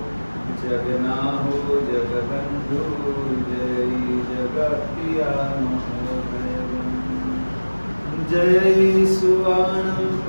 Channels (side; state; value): both; inverted; correlation -1.00